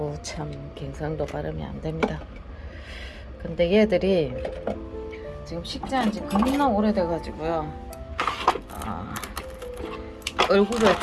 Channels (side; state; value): both; identical; correlation 1.00